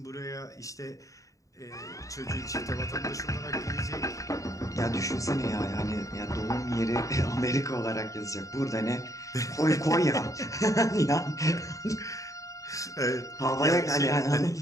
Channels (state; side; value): late; right; 0.16 ms